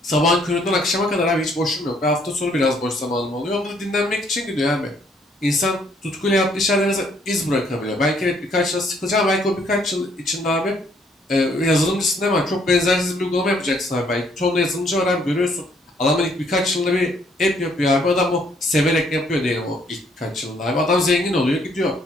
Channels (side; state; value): both; normal; correlation 0.67